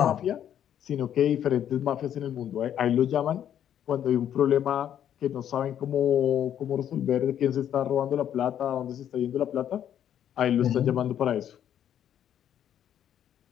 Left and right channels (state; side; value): quieter; right; 10.1 dB